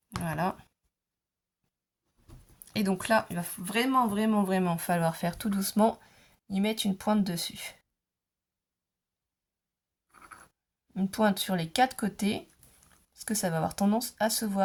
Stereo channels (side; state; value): both; identical; correlation 1.00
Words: Voilà. Et donc là, il va vraiment falloir faire tout doucement, y mettre une pointe dessus. Une pointe sur les 4 côtés, parce que ça va avoir tendance à se